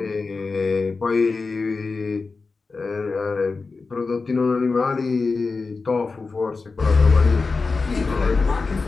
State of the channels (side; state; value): right; quieter; 4.2 dB